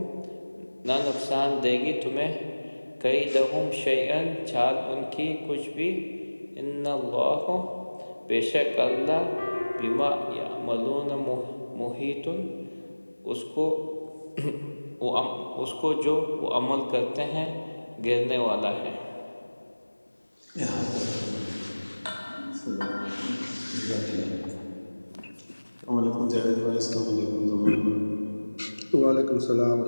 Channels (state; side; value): inverted; both; correlation -1.00